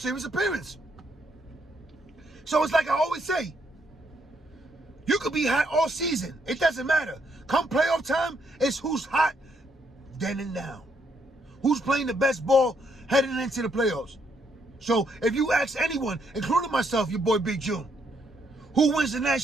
appearance. So it's like I always say, you could be hot all season. It doesn't matter. Come playoff time, it's who's hot then and now. Who's playing the best ball heading into the playoffs. So if you ask anyone, including myself, your boy Big June, who wins the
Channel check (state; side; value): normal; both; correlation 0.74